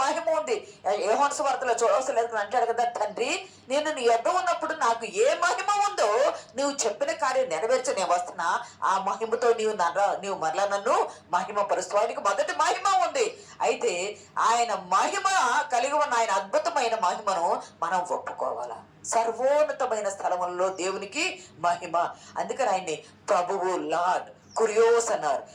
మహిమ ఉంది. యోహాను సువార్తలో చూడవలసిన లేదు అంటాడు కదా, తండ్రి నేను నీ యొద్ద ఉన్నప్పుడు నాకు ఏ మహిమ ఉందో నువ్వు చెప్పిన కార్యం నెరవేర్చి నేను వస్తున్నా, ఆ మహిమతో నీవు మరలా నన్ను మహిమ పరుస్తూ. ఆయనకు మొదటి మహిమ ఉంది. అయితే ఆయన మహిమ కలిగి ఉన్న ఆయన అద్భుతమైన మహిమను మనం ఒప్పుకోవాలా. సర్వోన్నతమైన స్థలములలో దేవునికి మహిమ. అందుకని ఆయన్ని ప్రభువు, లార్డ్, కురియోస్ అన్నారు.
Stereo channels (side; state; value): both; identical; correlation 1.00